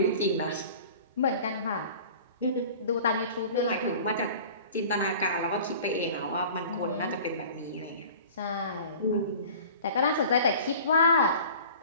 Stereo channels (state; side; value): inverted; both; correlation -0.43